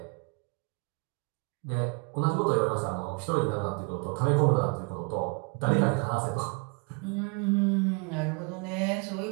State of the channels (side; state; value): left; quieter; 34.5 dB